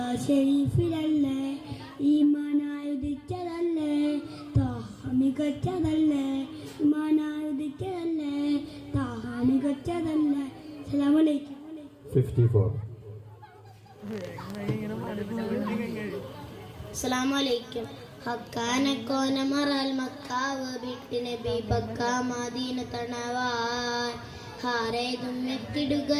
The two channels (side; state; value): both; identical; correlation 1.00